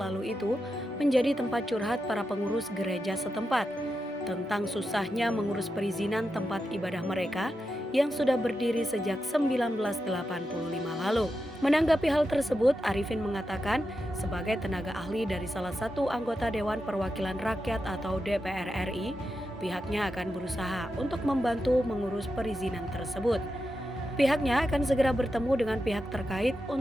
itu menjadi tempat curhat para pengurus gereja setempat tentang susahnya mengurus perizinan tempat ibadah mereka yang sudah berdiri sejak 1985 lalu. Menanggapi hal tersebut, Arifin mengatakan sebagai tenaga ahli dari salah satu anggota Dewan Perwakilan Rakyat atau DPR RI, pihaknya akan berusaha untuk membantu mengurus perizinan tersebut. Pihaknya akan segera bertemu dengan pihak terkait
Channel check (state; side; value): normal; both; correlation 0.88